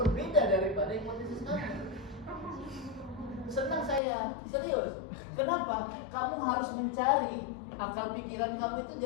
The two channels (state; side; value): drops out; right; at 4.0 s